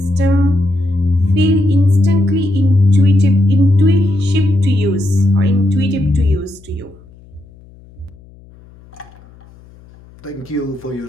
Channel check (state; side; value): noise; left; hum, 25 dB below the sound